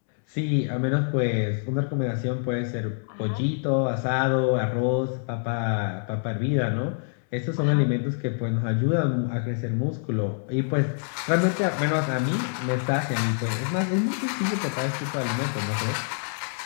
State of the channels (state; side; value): silent; right; digital silence